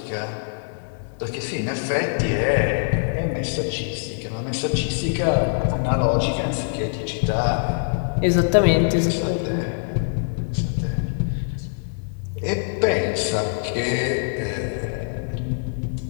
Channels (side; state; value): right; silent; 63 dB below the other